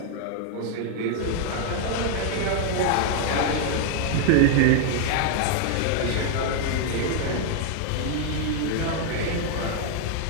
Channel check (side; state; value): both; different; correlation 0.00